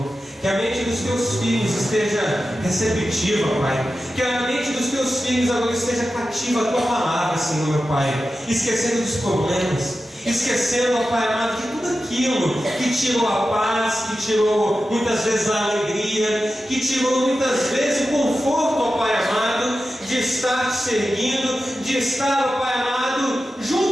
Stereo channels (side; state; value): both; normal; correlation 0.92